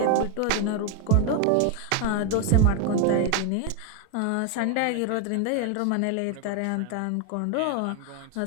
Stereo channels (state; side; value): different; both; correlation 0.01